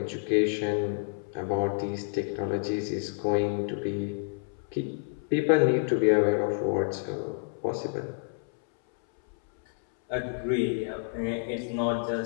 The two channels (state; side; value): silent; right; 59 dB below the other